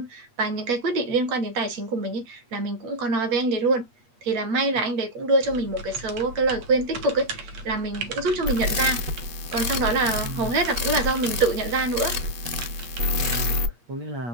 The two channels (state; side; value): late; left; 8.4 ms